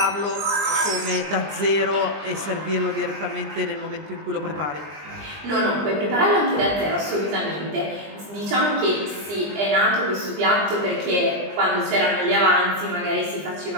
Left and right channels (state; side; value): late; left; 20 ms